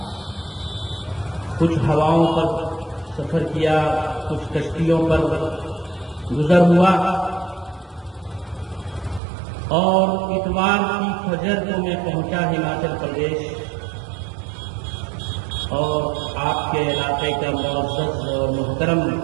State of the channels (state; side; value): drops out; left; at 9.2 s